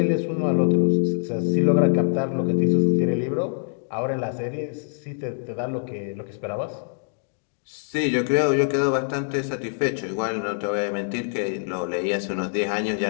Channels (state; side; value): silent; right; digital silence